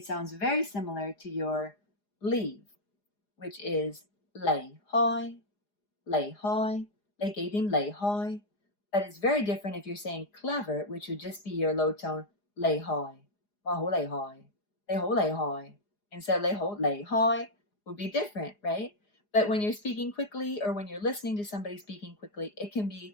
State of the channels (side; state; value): right; late; 4.9 ms